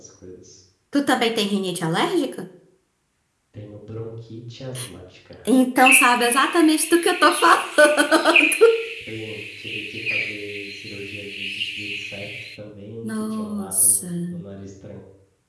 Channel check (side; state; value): both; identical; correlation 1.00